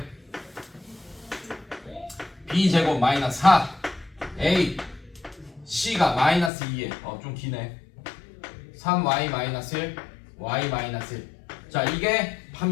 b제곱 마이너스 4 a c가 마이너스 2에 좀 기네. 3y 마이너스 1 y 마이너스 1. 자, 이게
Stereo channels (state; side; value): drops out; right; at 6.5 s